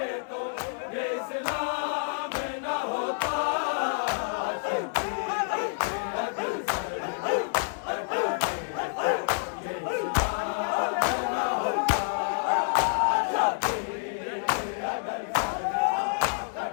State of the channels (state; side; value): silent; right; digital silence